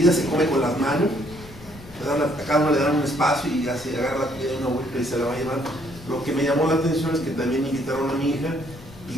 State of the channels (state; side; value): noise; left; rumble, 19 dB below the sound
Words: se come con las manos, a cada uno le dan un espacio y ya se agarra la comida de una vuelta y se la va a llevar. Lo que me llamó la atención es que también invitaron a mi hija,